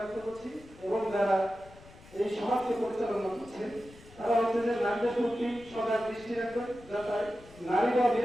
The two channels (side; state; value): left; noise; rumble, 21 dB below the sound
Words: করছি। এবং যারা এই সমাজকে পরিচালনা করছেন তারা হচ্ছে যে নারীদের প্রতি সদা দৃষ্টি রাখবেন, যাতে নারীরা